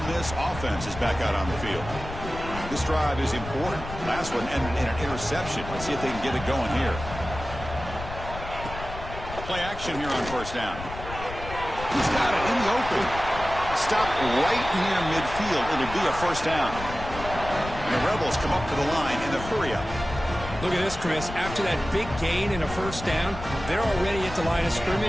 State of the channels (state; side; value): noise; left; rumble, 10 dB below the sound